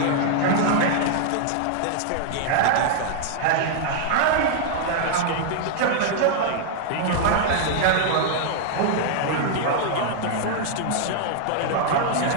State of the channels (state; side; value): different; both; correlation -0.01